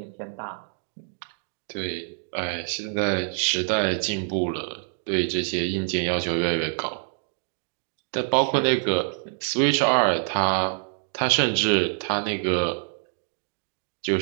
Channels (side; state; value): left; silent; 61 dB below the other